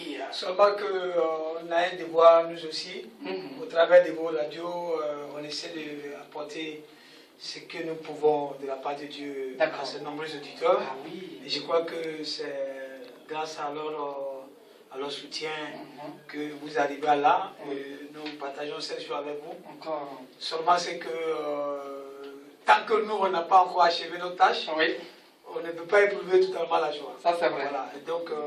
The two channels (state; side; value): identical; both; correlation 1.00